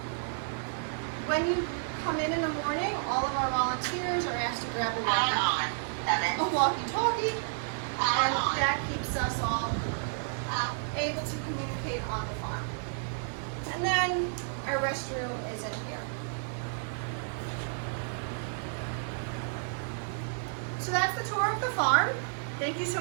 When you come in the morning, all of our volunteers are asked to grab a walkie-talkie, and that keeps us all able to communicate on the farm. And then our restroom is in here. So that's the tour of the farm. Thank you so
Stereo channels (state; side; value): silent; left; digital silence